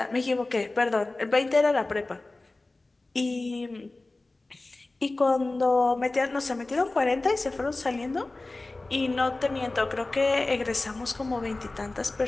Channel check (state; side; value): quieter; right; 3.1 dB